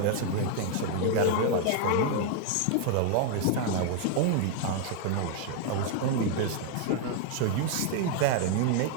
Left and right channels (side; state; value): both; different; correlation 0.00